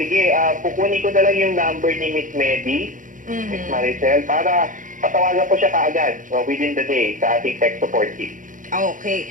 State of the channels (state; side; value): late; left; 0.38 ms